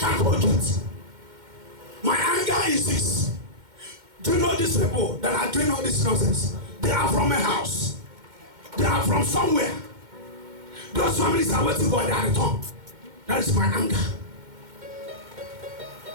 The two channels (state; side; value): late; left; 2.1 ms